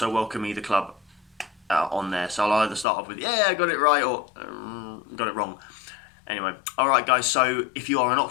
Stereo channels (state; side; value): drops out; right; at 2.9 s